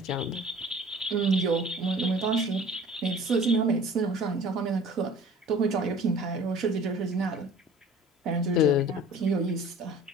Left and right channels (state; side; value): normal; both; correlation 0.46